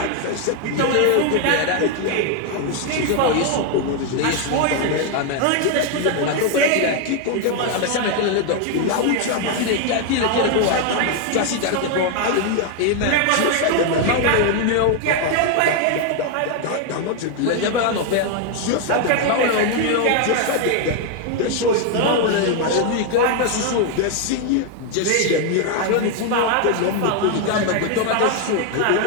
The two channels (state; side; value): different; both; correlation 0.01